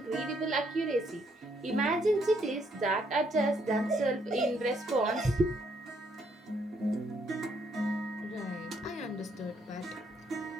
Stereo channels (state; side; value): normal; both; correlation 0.71